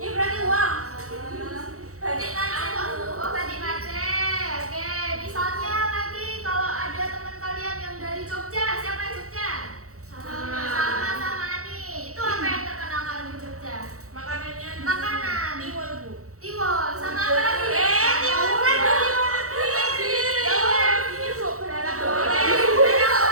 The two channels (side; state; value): left; late; 0.64 ms